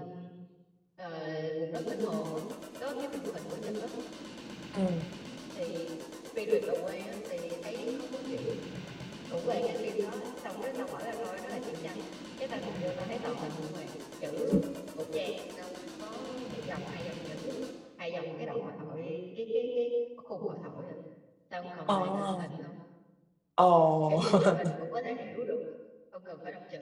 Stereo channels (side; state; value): both; identical; correlation 1.00